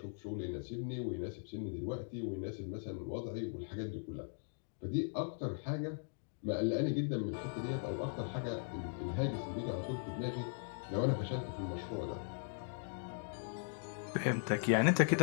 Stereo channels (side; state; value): right; silent; digital silence